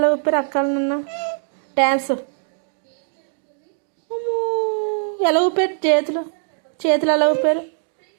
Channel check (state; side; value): silent; left; digital silence